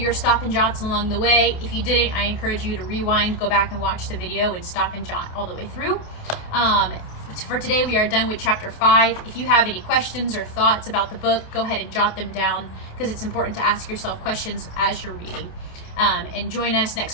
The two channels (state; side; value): late; right; 28 ms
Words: stop and jots along the way. If you didn't, I encourage you to rewind, go back and watch the video and stop and jot all the way through. For today, we are done with chapter 5. If you have any questions or thoughts about the book, go ahead and jot them down, because it's important to ask yourself questions as you're reading. And join us